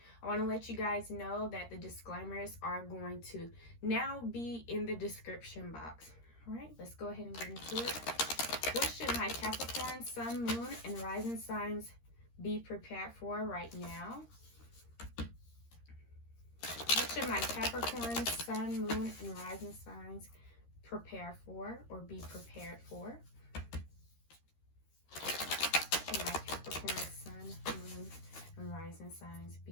I want to let you guys know that the disclaimers are going to now be in the description box. All right, let's go ahead and get into it. What should my Capricorn, Sun, Moon, and Rising signs be prepared for right now? What should my Capricorn, Sun, Moon, and Rising signs prepare for or be prepared for? What should my Capricorn, Sun, Moon, and Rising signs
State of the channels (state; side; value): late; right; 13 ms